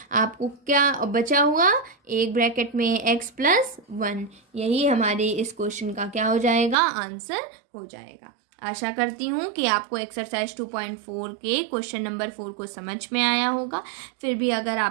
आपको क्या बचा हुआ, एक ब्रैकेट में x प्लस 1, यही हमारे इस क्वेश्चन का क्या हो जाएगा, आंसर हो जाएगा। आशा करती हूँ कि आपको एक्सरसाइज 2.4 के क्वेश्चन नंबर 4 को समझ में आया होगा। फिर भी अगर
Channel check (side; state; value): left; drops out; at 6.8 s